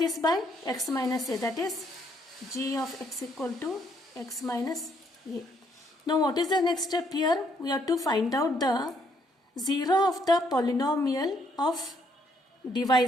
by x minus a, that is g of x equal to x minus a. Now what is the next step here? We have to find out the 0 of the polynomial of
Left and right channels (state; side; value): normal; both; correlation 0.70